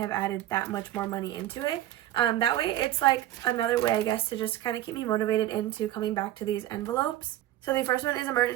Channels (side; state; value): left; quieter; 13.8 dB